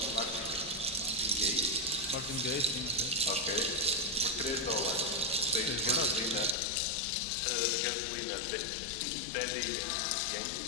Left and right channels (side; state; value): right; drops out; at 6.6 s